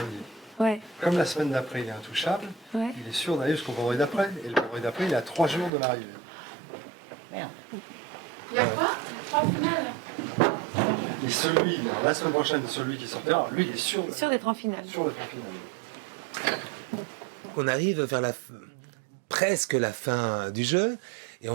Ouais. Comme la semaine d'après, il est intouchable, il est sûr d'aller jusqu'au vendredi d'après. Et le vendredi d'après, il est à 3 jours de l'arrivée. Merde. Il y a quoi 3 finales. Et la semaine prochaine, celui qui sortira, lui, il est sûr d'être en finale. On arrive vers presque la fin du jeu et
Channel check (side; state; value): left; drops out; at 5.7 s